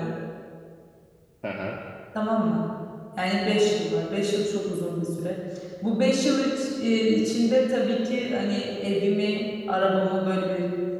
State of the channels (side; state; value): both; identical; correlation 1.00